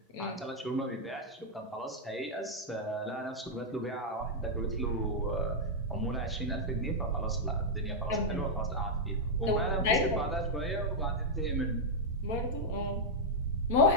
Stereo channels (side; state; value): both; normal; correlation -0.03